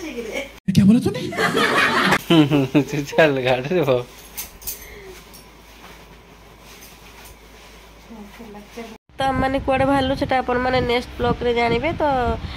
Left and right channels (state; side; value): identical; both; correlation 1.00